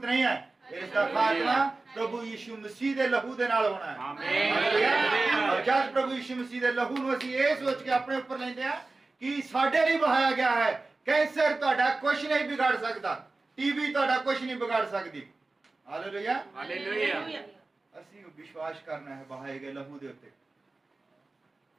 ਨਹੀਂ ਹੈ। ਇਸ ਦਾ ਖਾਤਮਾ ਪ੍ਰਭੂ ਯਿਸੂ ਮਸੀਹ ਦੇ ਲਹੂ ਦੇ ਨਾਲ ਹੋਣਾ ਹੈ। ਆਮੀਨ। ਔਰ ਜਦ ਪ੍ਰਭੂ ਯਿਸੂ ਮਸੀਹ ਦੇ ਲਹੂ ਨੂੰ ਅਸੀਂ ਇਹ ਸੋਚ ਕੇ ਆਪਣੇ ਉੱਪਰ ਲੈਂਦੇ ਆ ਕਿ ਸਾਡੇ ਲਈ ਵਹਾਇਆ ਗਿਆ ਹੈ, ਕੈਂਸਰ ਤੁਹਾਡਾ ਕੁਝ ਨਹੀਂ ਵਿਗਾੜ ਸਕਦਾ, ਟੀਬੀ ਤੁਹਾਡਾ ਕੁਝ ਨਹੀਂ ਵਿਗਾੜ ਸਕਦੀ। ਹਾਲੇਲੂਇਆ। ਹਾਲੇਲੂਇਆ। ਅਸੀਂ ਵਿਸ਼ਵਾਸ ਕਰਨਾ ਹੈ ਵਹਾਏ ਗਏ ਲਹੂ ਦੇ ਉੱਤੇ।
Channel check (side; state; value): left; quieter; 3.4 dB